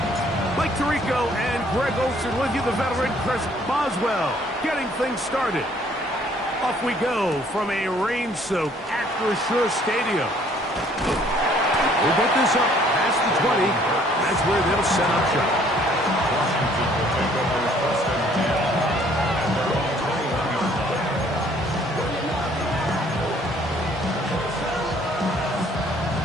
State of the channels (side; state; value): both; normal; correlation 0.60